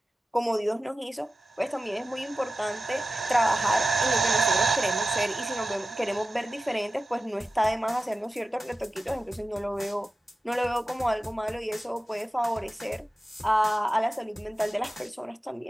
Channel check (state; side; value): normal; both; correlation 0.93